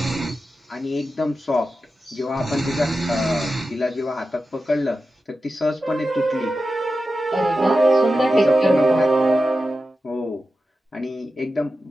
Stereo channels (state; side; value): normal; both; correlation 0.92